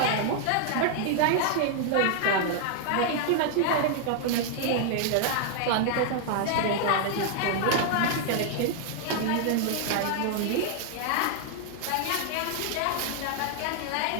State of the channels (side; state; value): both; different; correlation 0.00